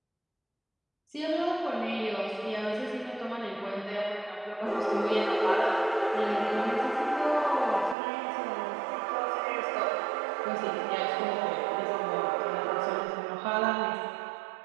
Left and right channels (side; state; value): left; drops out; at 8.0 s